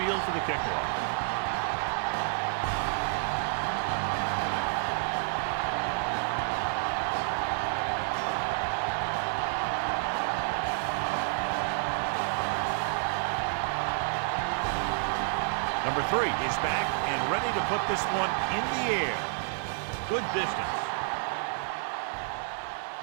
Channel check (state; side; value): silent; left; 58 dB below the other